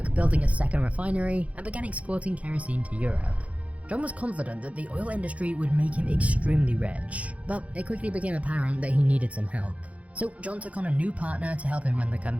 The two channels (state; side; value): late; left; 0.065 ms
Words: building a second refinery and began exporting kerosene to Europe. John was confident that the oil industry would make him extremely rich, but it quickly became apparent that he needed some help. So John took on a new partner to help him run the